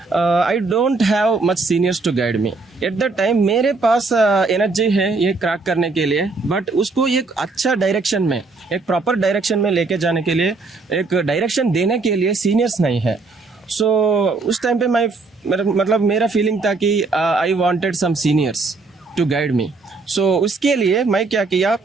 I don't have much seniors to guide me. At the time मेरे पास energy है ये crack करने के लिए, but उसको एक अच्छा डायरेक्शन में, एक प्रॉपर डायरेक्शन में लेके जाने के लिए, एक डायरेक्शन देने के लिए सीनियर्स नहीं है. सो उस टाइम पे मेरा फीलिंग था कि I wanted some seniors to guide me. So उसके लिए मैं क्या किया,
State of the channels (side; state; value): left; quieter; 3.8 dB